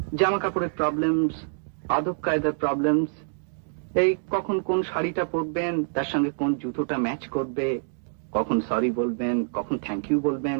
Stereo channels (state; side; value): silent; left; digital silence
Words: জামা কাপড়ের প্রবলেমস, আদব কায়দার প্রবলেমস, এই কখন কোন শাড়িটা পরবেন, তার সঙ্গে কোন জুতোটা ম্যাচ করবে, কখন সরি বলবেন, কখন থ্যাংক ইউ বলবেন,